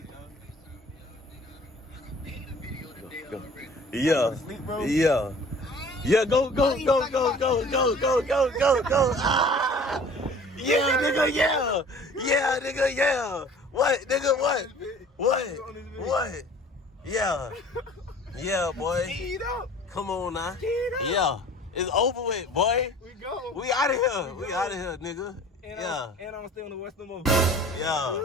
Yeah. Yeah, go. Ah! Yeah, nigga, yeah. What, nigga, what? Yeah, boy. Come on now. Yeah. It's over with, boy. We out of here, nigga. And I'm still in the Western Mall.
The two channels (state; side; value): normal; both; correlation 0.47